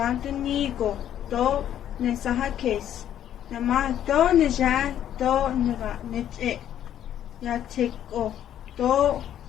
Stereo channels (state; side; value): quieter; right; 10.7 dB